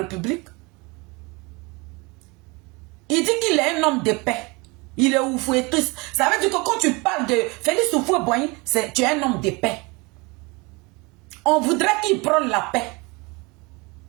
il dit qu'il est un homme de paix. Il est oufouetiste. Ça veut dire que quand tu parles de Félix Houphouët-Boigny, tu es un homme de paix. On voudrait qu'il prenne la paix.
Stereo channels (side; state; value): left; quieter; 26.6 dB